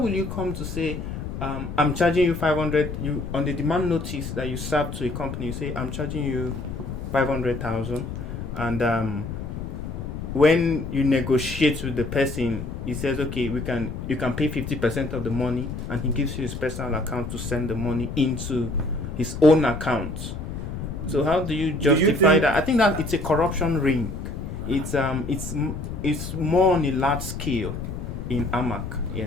you come to say, I'm charging you 500? You on the demand notice that you serve to a company, you say I'm charging you 500,000, and when you negotiate with the person, he says, okay, you can pay 50% of the money, and he gives you his personal account to send the money into his own account. So how do you justify that? I think that it's a corruption ring. It's more on a large scale in AMAC.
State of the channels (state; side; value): noise; left; rumble, 6 dB below the sound